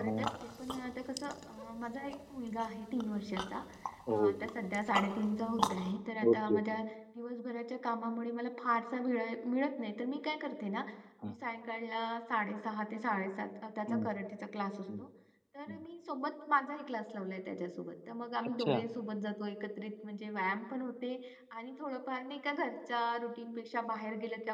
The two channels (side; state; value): both; identical; correlation 1.00